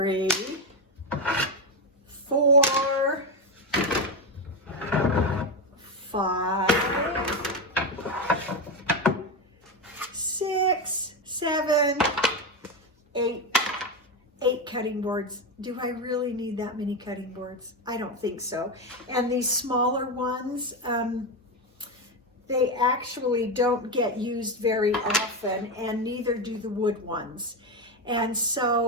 4, 5, 6, 7, 8 cutting boards. Do I really need that many cutting boards? I don't think so. And these smaller ones, they actually don't get used very often, and neither do the wood ones. And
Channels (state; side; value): normal; both; correlation 0.12